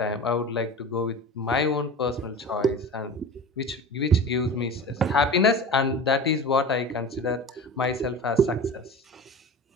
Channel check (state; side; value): normal; both; correlation 0.34